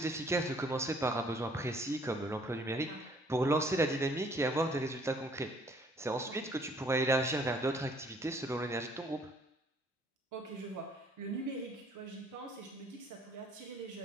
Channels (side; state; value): both; normal; correlation 0.60